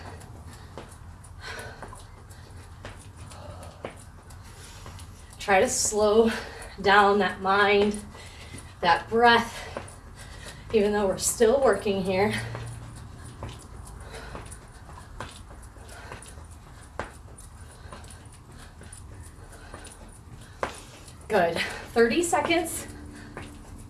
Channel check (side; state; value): both; identical; correlation 1.00